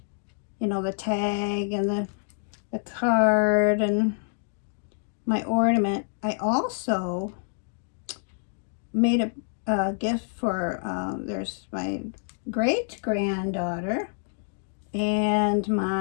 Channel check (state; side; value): silent; right; digital silence